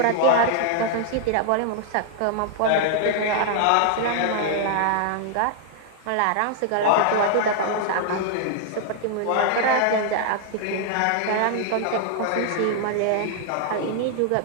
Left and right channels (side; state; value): both; different; correlation 0.00